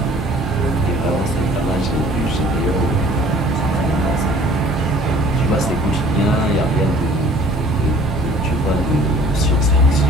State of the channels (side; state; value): both; normal; correlation 0.53